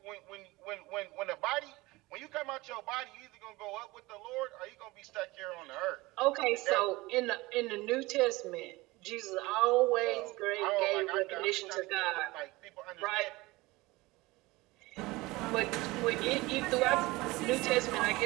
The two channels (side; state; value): left; quieter; 21.2 dB